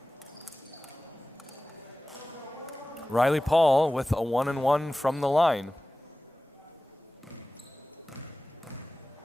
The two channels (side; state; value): both; normal; correlation 0.97